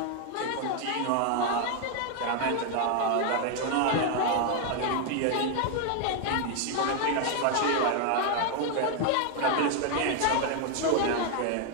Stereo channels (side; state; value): both; different; correlation 0.00